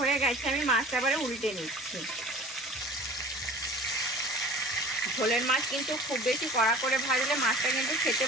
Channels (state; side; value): normal; both; correlation 0.43